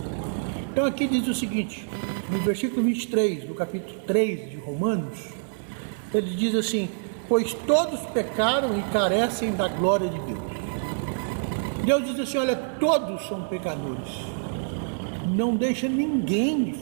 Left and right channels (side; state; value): left; silent; digital silence